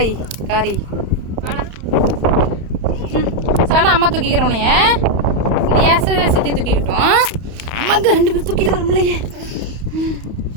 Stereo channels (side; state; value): left; late; 31 ms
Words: காரி? சானா அம்மா தூக்கிக்கிறோனைய சித்தி தூக்கிக்கிட்டோம். அம்மாங்க 2 பேரும் தூக்கிட்டு வரமுலையே.